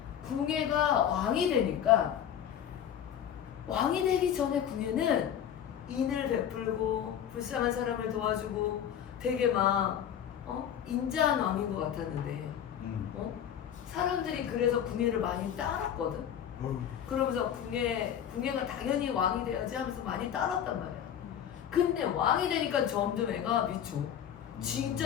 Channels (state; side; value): quieter; right; 9.4 dB